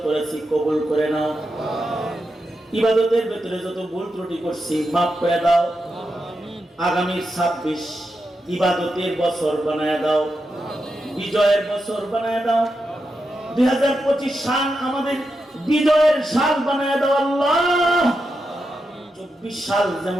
করেছি কবুল করে নাও। ইবাদতের ভিতরে যত ভুল ত্রুটি করছি মাফ করে দাও। আগামী 26 ইবাদতের বছর বানায় দাও, বিজয়ের বছর বানায় দাও। 2025 সাল আমাদের বিজয়ের সাল বানায় দাও আল্লাহ। 24 সাল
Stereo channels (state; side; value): normal; both; correlation 0.87